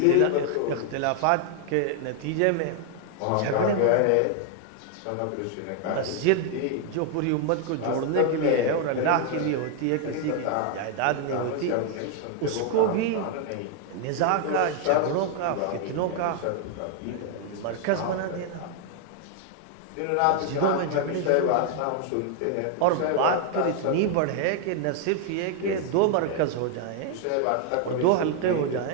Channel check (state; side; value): different; both; correlation 0.00